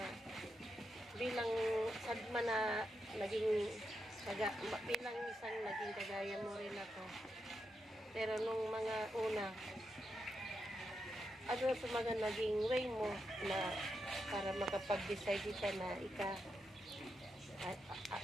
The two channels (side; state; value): both; normal; correlation 0.85